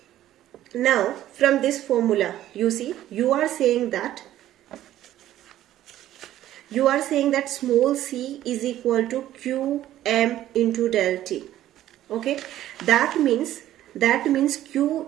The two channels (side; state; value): left; quieter; 13.1 dB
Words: now from this formula, you see, you are saying that small c is equal to qm into del T. Okay, that means Q